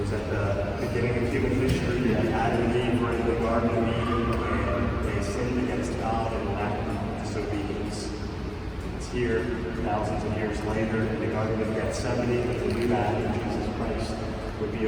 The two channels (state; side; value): identical; both; correlation 1.00